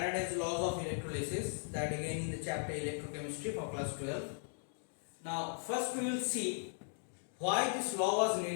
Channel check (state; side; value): silent; right; digital silence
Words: laws of electrolysis, that again in the chapter Electrochemistry for class 12. Now first we will see why this law was